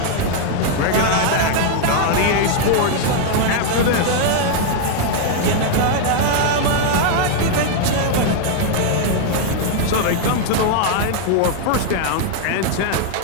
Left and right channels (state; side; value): different; both; correlation 0.00